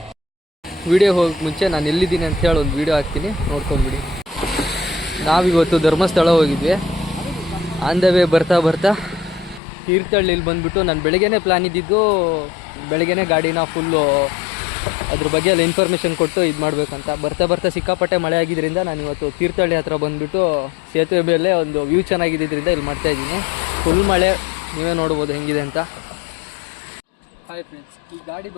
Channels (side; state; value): right; drops out; at 9.6 s